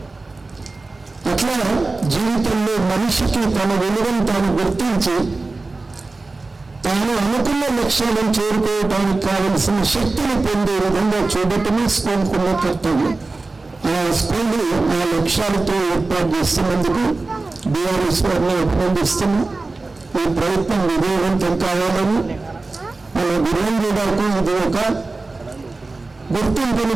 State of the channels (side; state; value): left; quieter; 3.4 dB